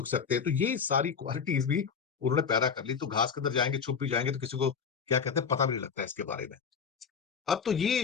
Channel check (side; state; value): right; quieter; 6.4 dB